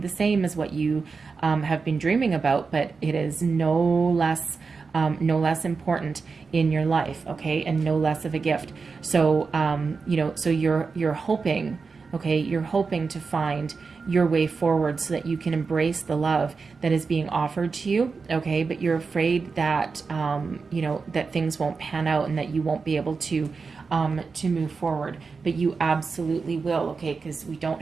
same as what you have been dreaming about, but it is no less important in your life, okay, and no less of a gift. So you know, so you're hoping, okay, you're hoping to find your way forward so that you can embrace the love that is being offered to you, okay, but you're afraid that you know, that things won't pan out and that you won't be able to move forward, but you absolutely will, okay, because we don't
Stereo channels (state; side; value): quieter; left; 4.7 dB